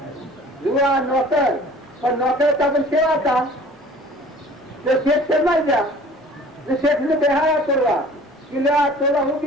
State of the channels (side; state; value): both; normal; correlation 0.48